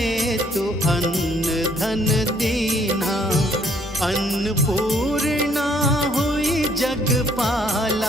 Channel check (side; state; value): both; normal; correlation 0.65